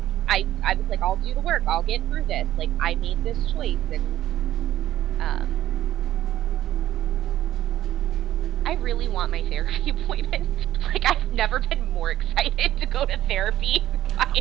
I was like, I'll do the work, I'll get through this. Like, I made this choice, and... I really want my therapy appointment. Like, I've never been more excited to go to therapy my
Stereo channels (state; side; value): quieter; left; 13.2 dB